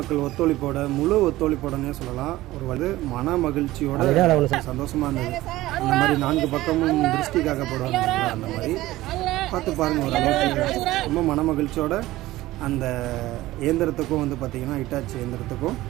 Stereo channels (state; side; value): quieter; left; 17.0 dB